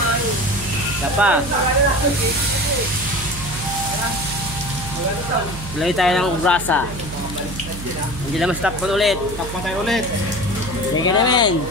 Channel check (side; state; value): right; noise; hum, 10 dB below the sound